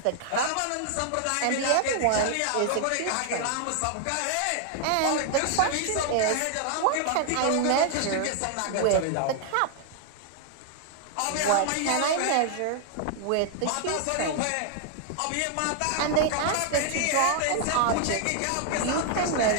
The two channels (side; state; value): both; different; correlation 0.00